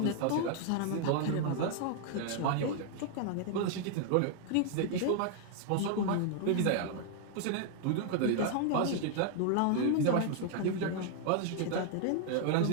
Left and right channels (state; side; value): different; both; correlation 0.00